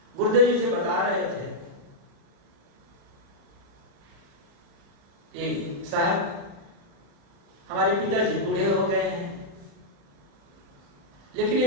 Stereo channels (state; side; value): late; left; 36 ms